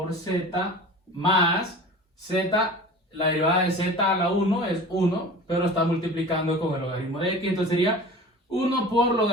z más z, la derivada de z a la 1 es 1, pero está multiplicando con el logaritmo de x, entonces sería 1 por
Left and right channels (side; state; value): both; normal; correlation 0.38